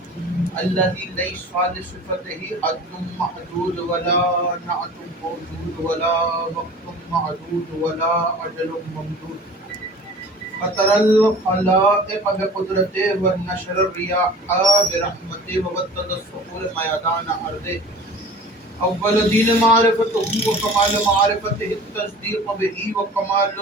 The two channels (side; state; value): both; normal; correlation 0.42